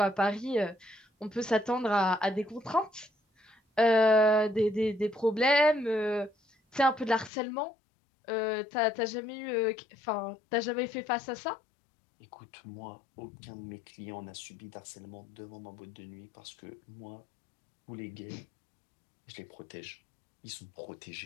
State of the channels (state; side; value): drops out; right; at 7.3 s